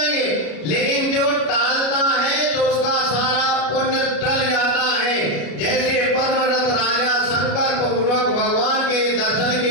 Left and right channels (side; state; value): right; late; 33 ms